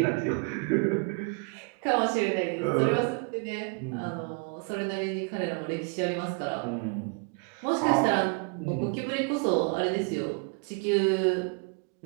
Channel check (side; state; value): left; quieter; 34.8 dB